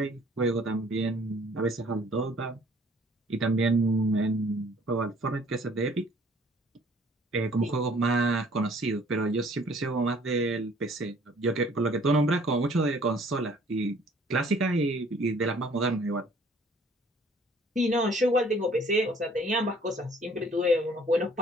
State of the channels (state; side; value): normal; both; correlation 0.56